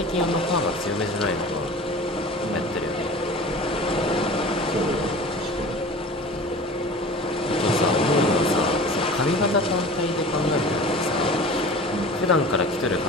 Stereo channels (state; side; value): normal; both; correlation 0.39